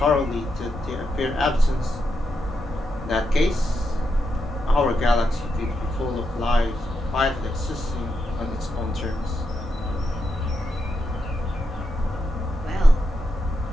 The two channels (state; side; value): normal; both; correlation 0.84